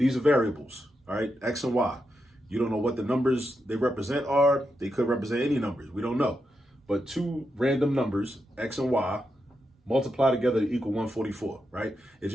are variables, all right? X and Y. You don't know what the numbers they represent are. They could represent any numbers. We don't know. But two random numbers, X and Y, multiply together to equal 144, right? It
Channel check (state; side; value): normal; both; correlation 0.85